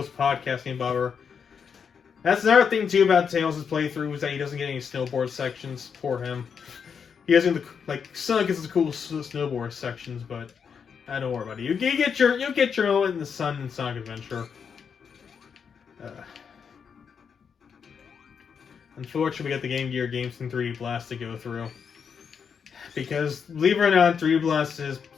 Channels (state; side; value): quieter; right; 6.7 dB